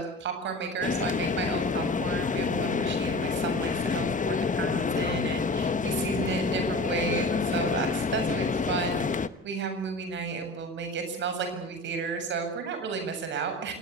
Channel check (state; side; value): normal; both; correlation 0.35